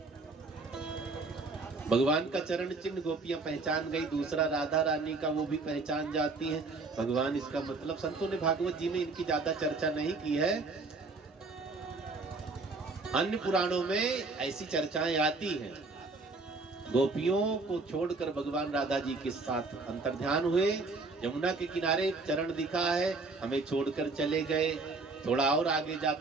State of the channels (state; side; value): quieter; left; 3.7 dB